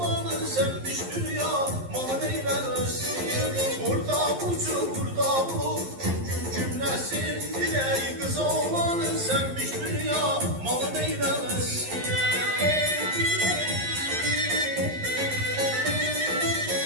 sevmiş dünya mal eylemesin. Burada bulur gün cümlesi. Diley kız oğlanın sevmiş dünya mal eylemesin.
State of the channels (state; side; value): late; left; 11 ms